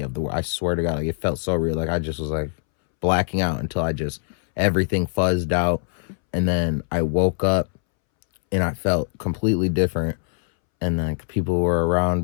of I swear to God, like it felt so real. Like I just was like blacking out until everything fuzzed out. And then I woke up and I felt completely different. And like people were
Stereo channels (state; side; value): silent; right; 64 dB below the other